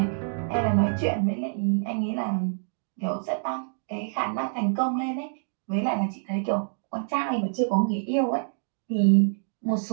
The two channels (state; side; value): silent; left; digital silence